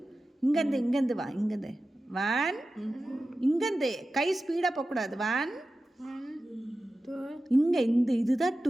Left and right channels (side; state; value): both; normal; correlation 0.94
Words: இங்கேருந்து வா, இங்கேருந்து 1 இங்கேருந்து கை ஸ்பீடாக போகக்கூடாது. 1 இங்கே இதுதான்